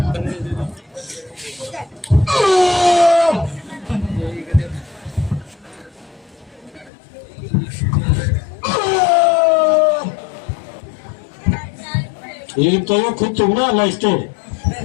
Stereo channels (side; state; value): right; drops out; at 6.9 s